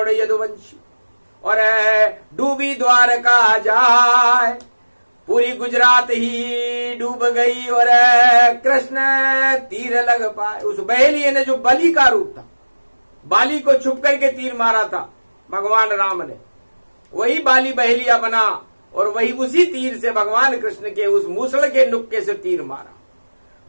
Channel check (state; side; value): inverted; both; correlation -1.00